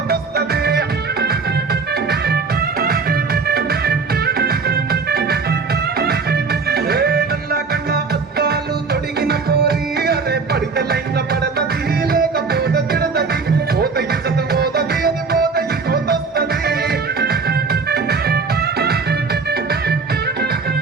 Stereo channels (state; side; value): quieter; left; 4.7 dB